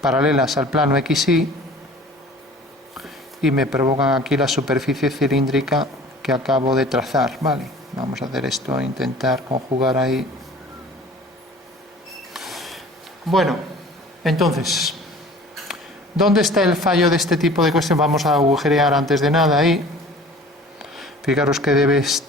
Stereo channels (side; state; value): both; normal; correlation 0.46